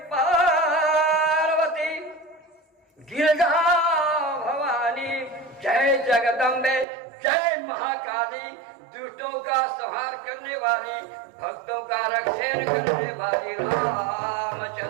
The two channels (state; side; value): drops out; left; at 6.9 s